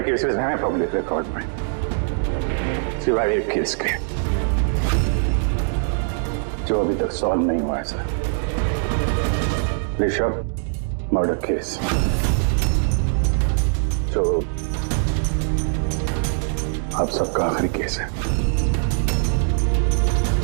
केसेस हैं पब्लिक रिकॉर्ड में, सिवाय एक केस के जो अभी तक सॉल्व नहीं हुआ है सर। ऋषभ मर्डर केस, जो आप सबका आखिरी केस है।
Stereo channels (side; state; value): left; silent; 61 dB below the other